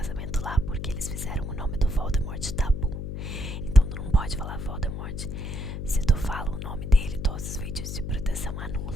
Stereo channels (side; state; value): left; noise; hum, 5 dB below the sound